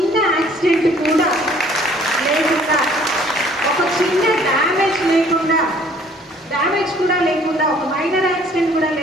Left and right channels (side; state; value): both; normal; correlation 0.57